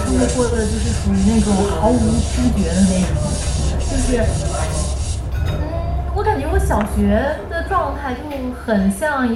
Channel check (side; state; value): both; identical; correlation 1.00